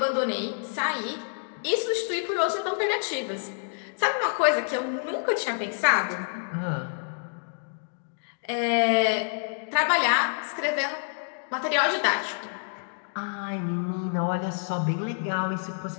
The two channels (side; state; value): right; silent; digital silence